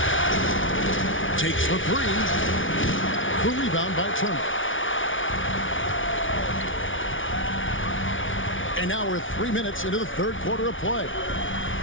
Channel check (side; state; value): right; late; 0.57 ms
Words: Takes the 3. The rebound by Turner. And now we're 3 minutes into the third quarter of play.